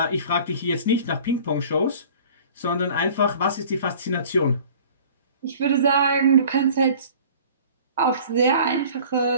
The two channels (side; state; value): both; inverted; correlation -0.47